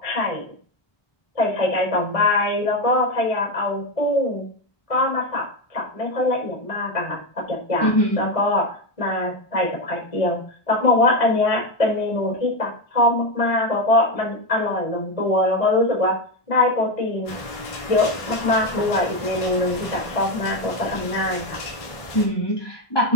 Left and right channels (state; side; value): late; right; 1.7 ms